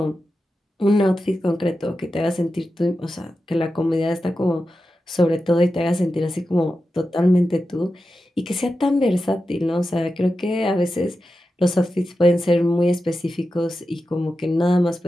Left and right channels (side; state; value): both; normal; correlation 0.91